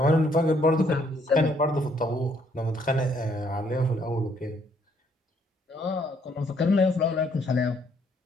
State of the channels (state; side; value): normal; both; correlation 0.68